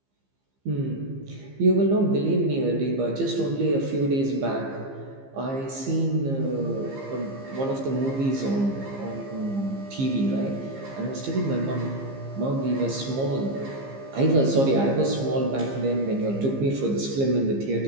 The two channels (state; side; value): late; left; 15 ms